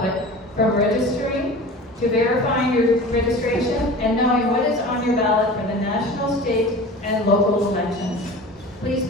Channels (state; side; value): normal; both; correlation 0.37